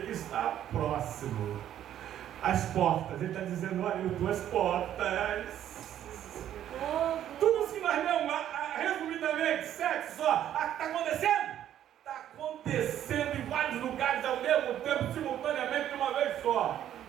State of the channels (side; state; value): left; quieter; 11.1 dB